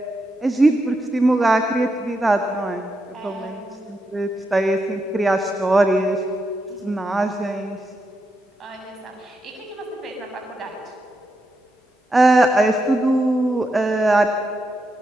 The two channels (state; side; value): normal; both; correlation 0.84